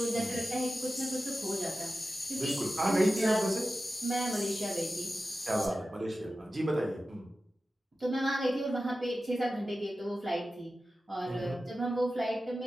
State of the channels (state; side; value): normal; both; correlation 0.94